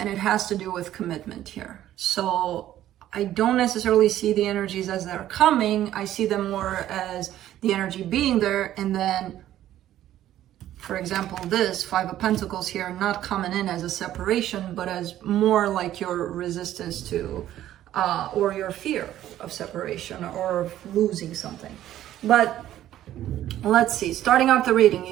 it has to do with commitment here. So I don't necessarily see the energies as they're coming. I see them more as the energy being there, and then for example, this Five of Pentacles here, not coming in as a separation, but as more like your resistance to, or your fear of separation or losing something. But let's see, starting off the reading,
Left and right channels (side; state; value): left; quieter; 12.7 dB